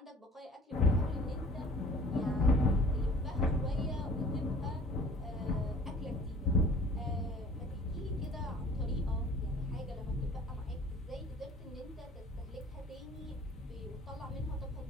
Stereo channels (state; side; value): normal; both; correlation 0.49